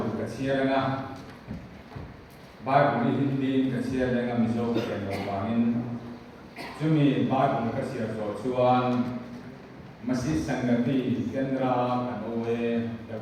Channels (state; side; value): identical; both; correlation 1.00